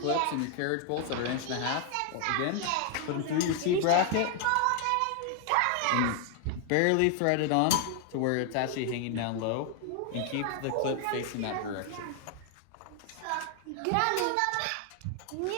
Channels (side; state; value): both; different; correlation 0.00